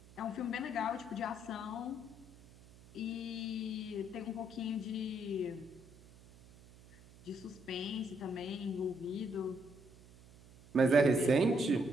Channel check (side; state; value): right; noise; hum, 22 dB below the sound